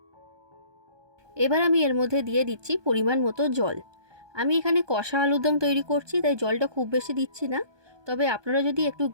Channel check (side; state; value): left; late; 1.2 ms